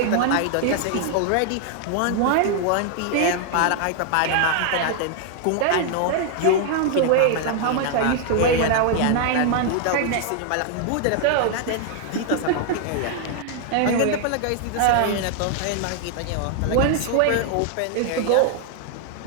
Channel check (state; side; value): different; both; correlation 0.00